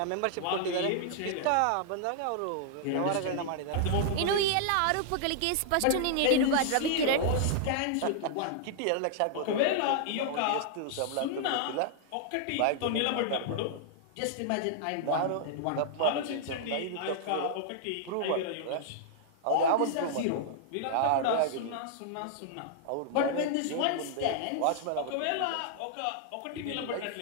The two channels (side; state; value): both; different; correlation -0.01